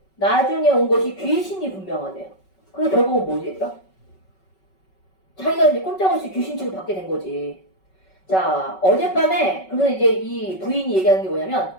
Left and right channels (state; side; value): late; right; 5.3 ms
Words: 나중에 온 것이 귀신이 분명하대요. 그래서 결국은 뭐지 얘들아? 자기가 이제 꼼짝없이 귀신 취급받게 된 거지. 자 어젯밤에 그래서 이제 이 부인이 얘기하는 게 뭐냐면